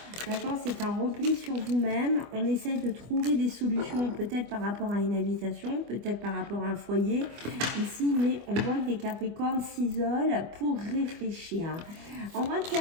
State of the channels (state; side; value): late; left; 25 ms